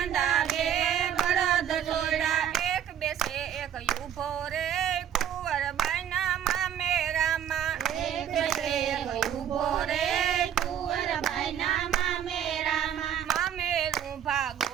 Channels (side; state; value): left; quieter; 9.7 dB